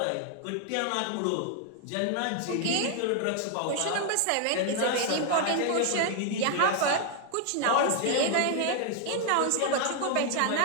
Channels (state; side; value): different; both; correlation 0.00